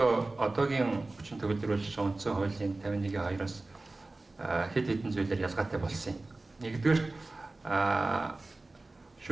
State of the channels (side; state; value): left; quieter; 3.1 dB